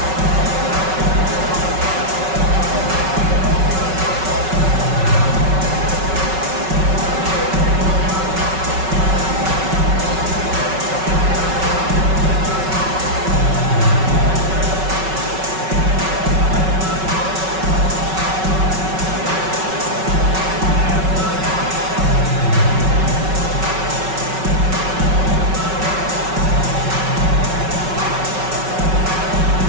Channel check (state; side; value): late; left; 5.3 ms